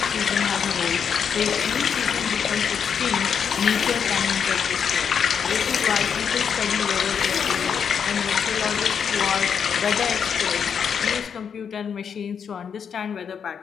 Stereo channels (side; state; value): right; quieter; 7.1 dB